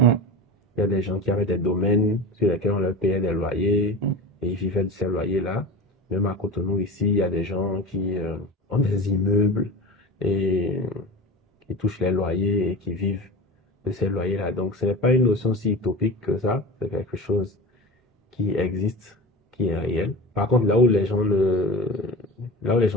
y a des gens qui avaient des domaines sur lesquels on leur payait des loyers et ils vivaient de ces loyers-là. Même à Cotonou, ici, il y a des gens qui ont des immeubles et qui touchent les loyers et qui vivent de ces loyers-là. Donc, ce n'est pas une notion si utopique que ça. C'est quelque chose qui existe, qui est réel. Par contre, là où les gens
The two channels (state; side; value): normal; both; correlation 0.31